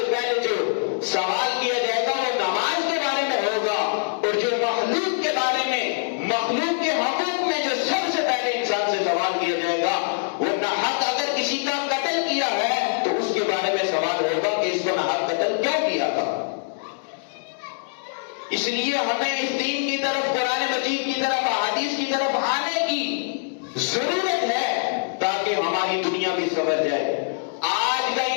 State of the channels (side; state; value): right; silent; digital silence